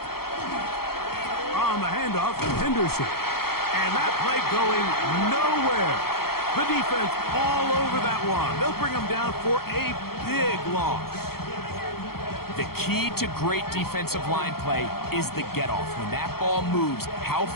On the handoff, Henderson. And that play going nowhere. The defense all over that one. They'll bring them down for a big loss. The key to great defensive line play is the get-off. When that ball moves, how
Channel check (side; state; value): right; late; 0.94 ms